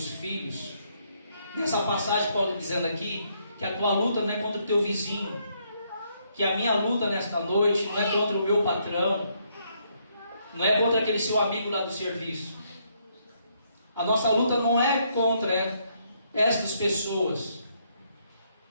filhos. Nessa passagem Paulo dizendo aqui que a tua luta não é contra o teu vizinho, que a minha luta nesta noite não é contra o meu patrão, não é contra aquele seu amigo lá do serviço. A nossa luta não é contra estas pessoas.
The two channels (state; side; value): inverted; both; correlation -0.73